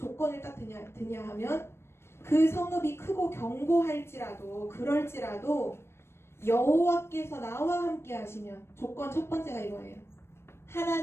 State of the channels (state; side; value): late; right; 0.12 ms